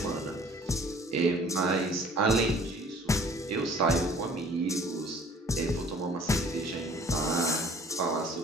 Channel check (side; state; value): both; normal; correlation 0.52